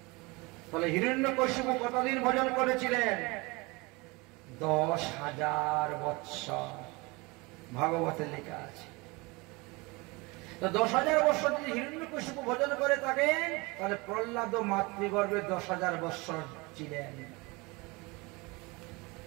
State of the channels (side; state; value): left; quieter; 25.5 dB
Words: তাহলে হিরণ্যকশিপু কতদিন ভোজন করেছিলেন? 10,000 বৎসর, ভাগবতে লেখা আছে। তো 10,000 বৎসর যদি হিরণ্যকশিপু ভোজন করে থাকেন, তাহলে প্রহ্লাদ মাতৃগর্ভে 10,000 বৎসর ছিলেন।